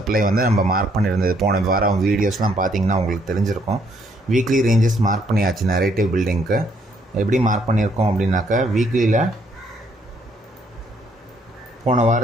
வந்து நம்ம மார்க் பண்ணியிருந்தது போன வாரம் வீடியோஸ்லாம் பார்த்தீங்கன்னா உங்களுக்கு தெரிஞ்சிருக்கும். வீக்லி ரேஞ்சஸ் மார்க் பண்ணியாச்சு. நரேட்டிவ் பில்டிங்க்கு எப்படி மார்க் பண்ணியிருக்கோம் அப்படின்னாக்கா, வீக்லியில் போன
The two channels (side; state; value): both; normal; correlation 0.69